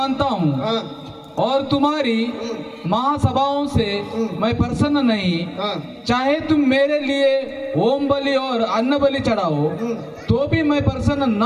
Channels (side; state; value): both; identical; correlation 1.00